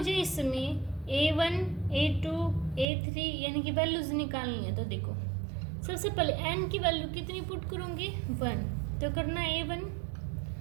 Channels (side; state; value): left; drops out; at 2.9 s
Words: इसमें A1 A2 A3 यानी कि वैल्यूज निकालनी है। तो देखो, सबसे पहले N की वैल्यू कितनी पुट करूँगी, 1। तो करना A1